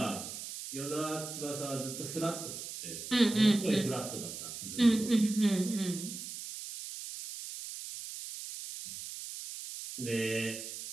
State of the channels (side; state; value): right; noise; hiss, 9 dB below the sound